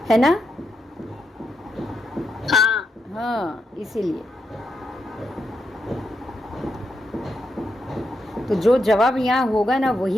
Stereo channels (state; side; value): normal; both; correlation 0.83